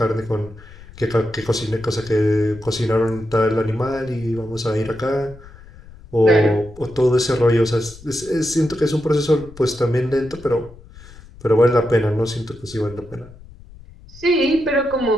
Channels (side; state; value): left; noise; rumble, 20 dB below the sound